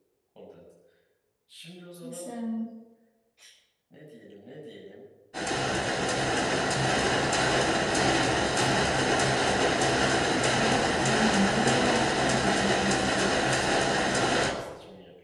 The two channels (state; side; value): identical; both; correlation 1.00